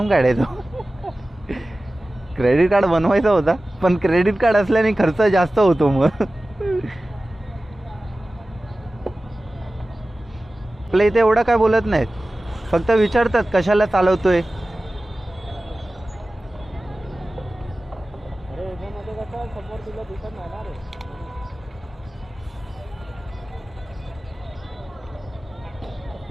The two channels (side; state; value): both; normal; correlation 0.96